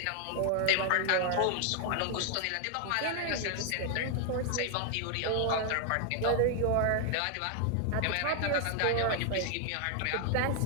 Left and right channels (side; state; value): both; different; correlation 0.00